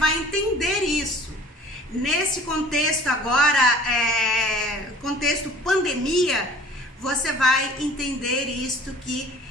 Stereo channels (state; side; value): normal; both; correlation 0.49